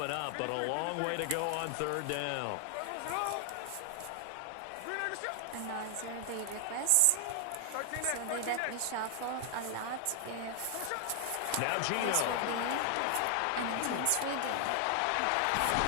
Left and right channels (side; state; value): both; different; correlation 0.00